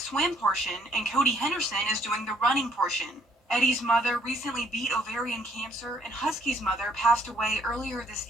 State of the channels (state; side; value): normal; both; correlation 0.65